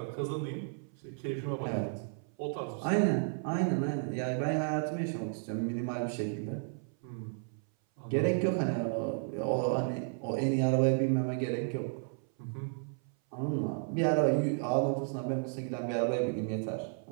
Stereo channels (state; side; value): silent; left; 56 dB below the other